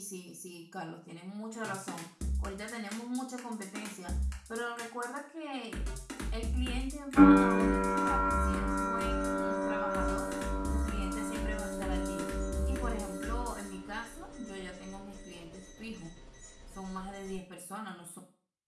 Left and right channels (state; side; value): identical; both; correlation 1.00